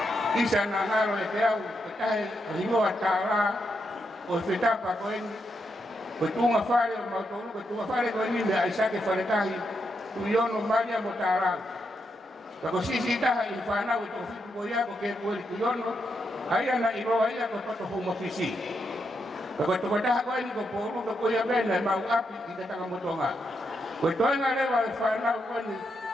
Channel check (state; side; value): normal; both; correlation 0.82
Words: Isa na ngaro ikaw, kaya hingo at tara, o fitapa ko ini, kutunga fare, mautulog, kutunga fare ko ini, may isa kay faritahi, tuyon o manya mo tarang. Kako sisitaha, ifanaw ito, ko ya ko kay Puweli tuyon o, ayah nak iro ayah kau patut home office. Kalau tu dah kau ini kau perlu kau yang benar mau api kita tak kamu tonga. Kau tu yang ada wal fana kau ni